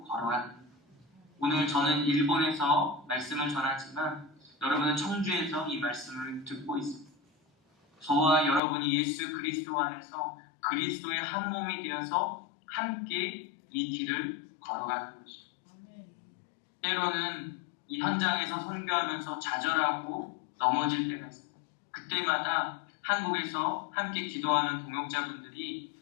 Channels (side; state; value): right; drops out; at 8.6 s